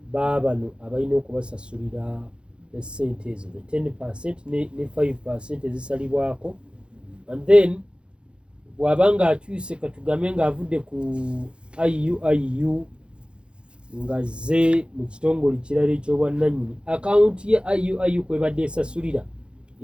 baabano abalina okubasasulira esente ezo 10% ne 5% ezisalibwako, and then bw'abanga akyuse katugambe ng'avudde ku IU nga zze mu kitongole kirala eky'obwannannyini akawunti ye IU kwebadde esasulira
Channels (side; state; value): left; late; 0.055 ms